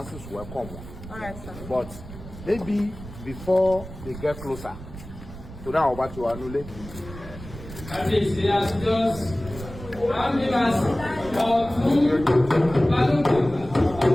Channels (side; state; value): right; noise; rumble, 14 dB below the sound